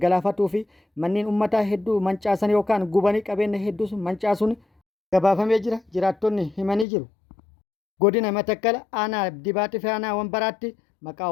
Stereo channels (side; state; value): right; drops out; at 6.9 s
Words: fi manneen uummataa hedduu mancaasan yookaan gubanii qabeenya hedduus mancaasuun gabaafamee jira. Jiraattonni himanii jiru. Godina Matakkal aanaa Dibaatii fi aanaa Wambaraatti maqaa